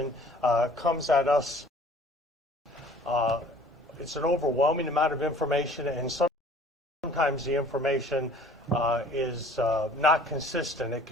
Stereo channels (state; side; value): normal; both; correlation 0.51